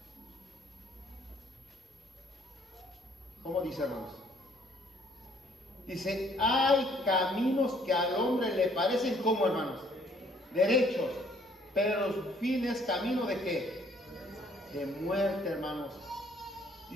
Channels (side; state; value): both; normal; correlation 0.62